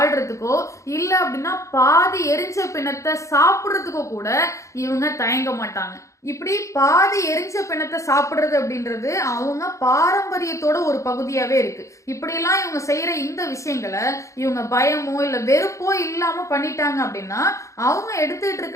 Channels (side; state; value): right; late; 0.15 ms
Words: இல்ல அப்படின்னா பாதி எரிஞ்ச பிணத்தை சாப்பிடுறதுக்கோ கூட இவங்க தயங்க மாட்டாங்க. இப்படி பாதி எரிஞ்ச பிணத்தை சாப்பிடுறது அப்படின்றது அவங்க பாரம்பரியத்தோட ஒரு பகுதியாவே இருக்கு. இப்படியெல்லாம் இவங்க செய்யற இந்த விஷயங்களை இவங்க பயமோ இல்ல வெறுப்போ இல்லாம பண்ணிட்டாங்க அப்படின்னா அவங்க எடுத்துட்டு